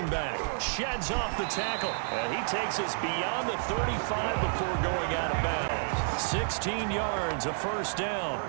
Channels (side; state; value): left; silent; digital silence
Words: back. Sheds off the tackle, and he takes us beyond the 35 before going out of bounds. 16 yards, a first down.